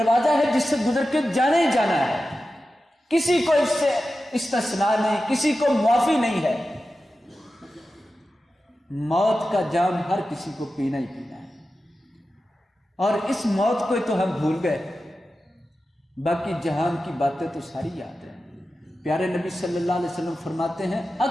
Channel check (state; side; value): normal; both; correlation 0.93